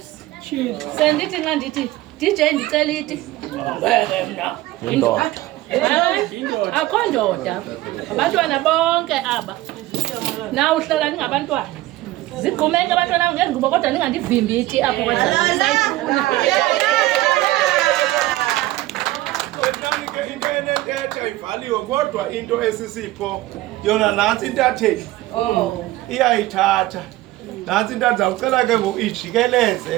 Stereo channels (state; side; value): quieter; left; 17.1 dB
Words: sendithi nxa ndithi DJ ndicela iti mna akho ndoda abantwana bonke aba na uhlala ningabantwana zigqumeke abantwana ngengubo kodwa ningandivimbi iti apho kwasayifuna into enentetha ivaliwe kodwa into esisipho yona nantsi intatheli iyayithatha Nansi into ndizawucela ke ngoku